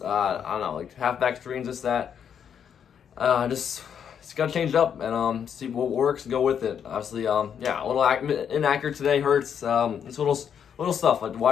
don't know, like halfback screens, that. It's got to change it up and see what works and go with it. Obviously, a little inaccurate today. Hurts. It's little stuff like the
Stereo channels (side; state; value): right; quieter; 8.1 dB